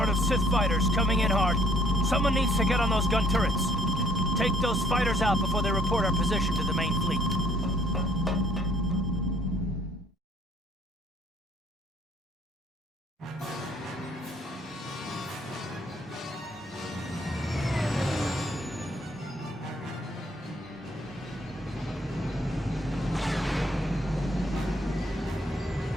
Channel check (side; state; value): both; normal; correlation 0.62